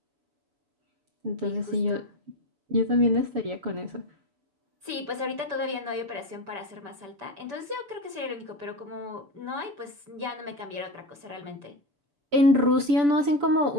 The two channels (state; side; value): late; left; 6.9 ms